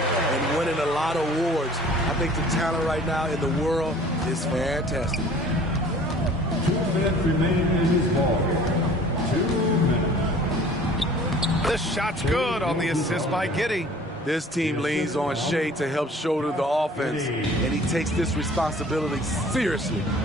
winning a lot of awards. I think the talent right now in the world is fantastic. 2 minutes remain in his ball game. 2 minutes. The shot's good on the assist by Giddey. This team leans on Shea to help shoulder the offense, and he takes this responsibility seriously.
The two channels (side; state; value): both; normal; correlation 0.49